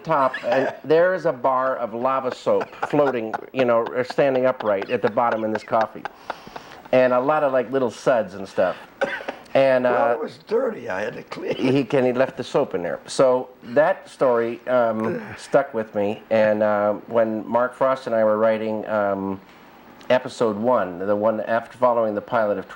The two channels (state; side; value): identical; both; correlation 1.00